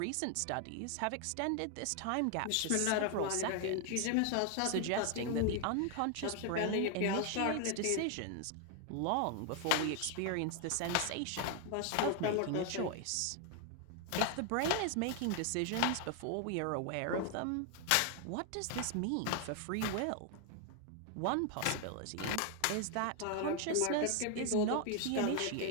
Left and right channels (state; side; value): different; both; correlation 0.00